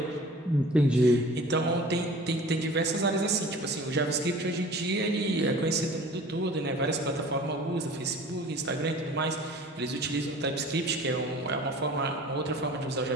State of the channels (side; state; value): both; normal; correlation 0.44